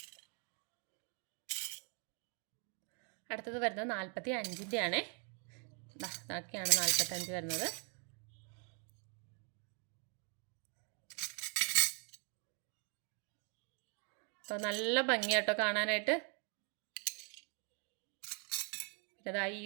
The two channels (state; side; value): quieter; left; 38.8 dB